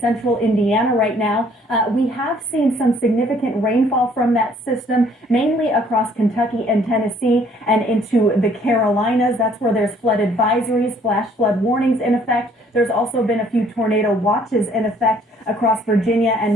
Indiana right now. We have seen some significant rainfall from that system, mainly across Kentucky and Tennessee and into the Carolinas. That's where there's flood advisories, flash flood warnings in effect. There's also been a few tornado watches in effect across Virginia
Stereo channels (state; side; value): normal; both; correlation 0.61